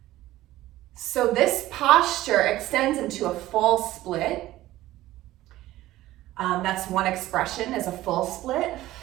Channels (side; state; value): left; quieter; 15.7 dB